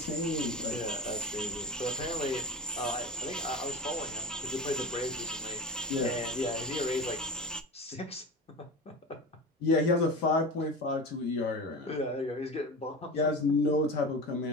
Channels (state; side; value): normal; both; correlation 0.30